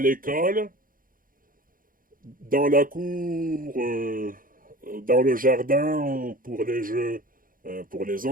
l'école, dans la cour, dans le jardin pour les jeux, pour les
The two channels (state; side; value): late; left; 0.40 ms